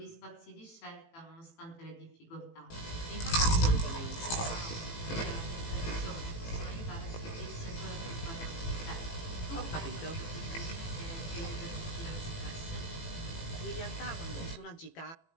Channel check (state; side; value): late; right; 18 ms